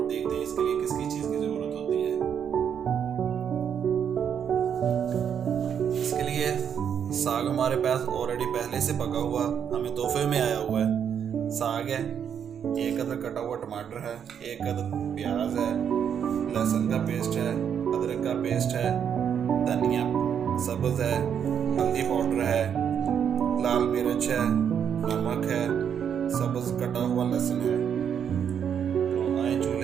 देखते हैं इसके लिए किस किस चीज़ की ज़रूरत होती है। इसके लिए साग हमारे पास ऑलरेडी पहले से पका हुआ हमें तोहफे में आया हुआ है। साग है, एक अदर कटा हुआ टमाटर है, एक अदर प्याज है, लहसुन का पेस्ट है, अदरक का पेस्ट है, धनिया सब्ज है, हल्दी पाउडर है, लाल मिर्च है, नमक है, सब्ज कटा हुआ लहसुन है। तो आए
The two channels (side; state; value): left; quieter; 8.1 dB